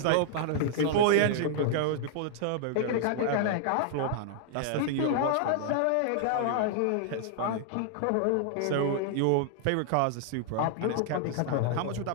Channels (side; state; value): both; different; correlation -0.01